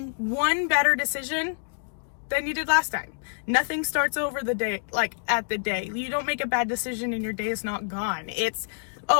one better decision than you did last time. Nothing starts over the day, like at the day. You don't make a bad decision and your day is not gone. It's,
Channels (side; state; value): right; silent; digital silence